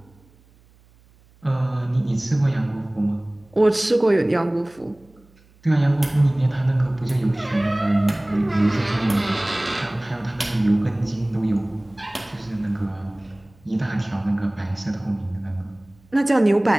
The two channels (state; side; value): noise; right; hum, 30 dB below the sound